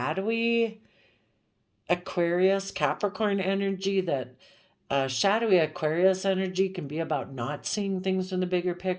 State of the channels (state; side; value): identical; both; correlation 1.00